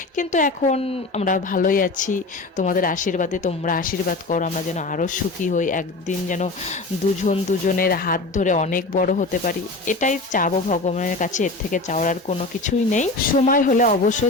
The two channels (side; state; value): right; quieter; 3.3 dB